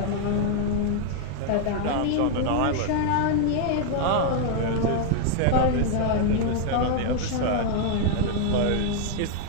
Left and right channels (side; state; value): both; different; correlation 0.00